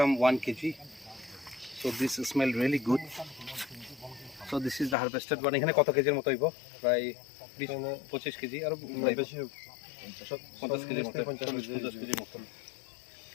1 kg. So this smell really good. So this is the harvested one. এখানে কত কেজির মতো হইব? প্রায় 20-25 কেজি আর বেশি, 50 কেজি মতো, 50 কেজি মতো।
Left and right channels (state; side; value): drops out; right; at 5.0 s